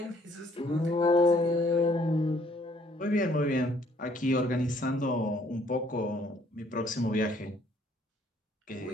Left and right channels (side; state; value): both; normal; correlation 0.63